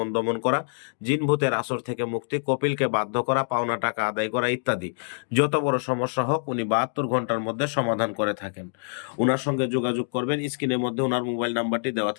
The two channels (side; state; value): right; silent; digital silence